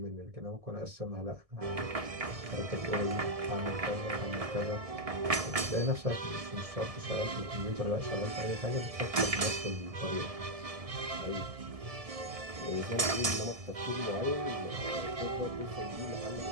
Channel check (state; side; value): late; left; 1.7 ms